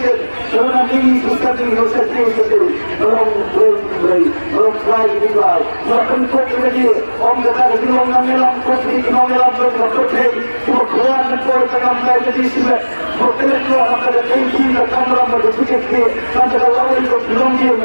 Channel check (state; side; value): inverted; both; correlation -1.00